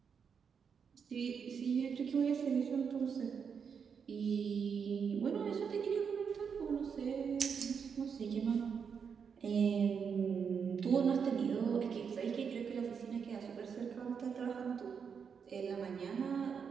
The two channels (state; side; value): quieter; left; 6.6 dB